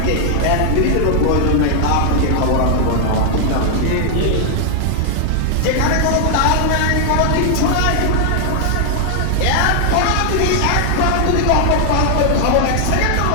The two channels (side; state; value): both; different; correlation 0.00